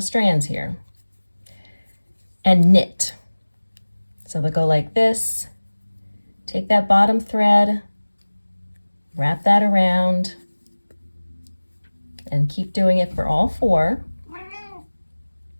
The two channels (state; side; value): inverted; both; correlation -1.00